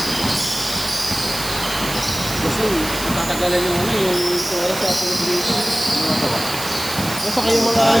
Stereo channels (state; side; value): noise; right; hiss, 8 dB below the sound